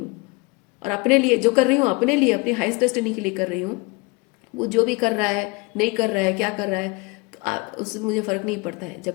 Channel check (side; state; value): right; quieter; 26.8 dB